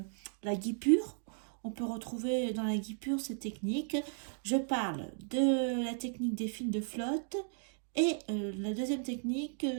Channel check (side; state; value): left; silent; digital silence